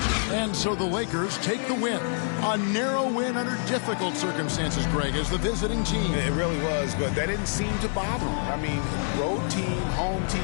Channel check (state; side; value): silent; right; digital silence